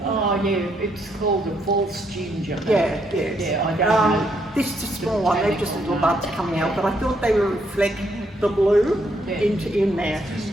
Oh yeah, it's called a false ginger. Yeah. Yeah, I don't know. This is a small one, they're just little buds coming out, but I thought they would reflect the blue in there.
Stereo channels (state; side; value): normal; both; correlation 0.74